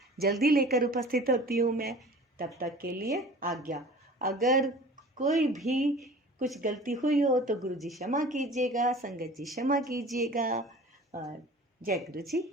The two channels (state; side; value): normal; both; correlation 0.43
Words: जल्दी लेकर उपस्थित होती हूँ मैं। तब तक के लिए आज्ञा। अगर कोई भी कुछ गलती हुई हो तो गुरुजी क्षमा कीजिएगा, संगत जी क्षमा कीजिएगा। और जय गुरुजी।